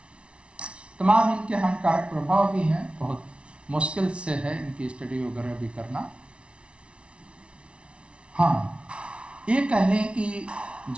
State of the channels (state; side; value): late; left; 0.059 ms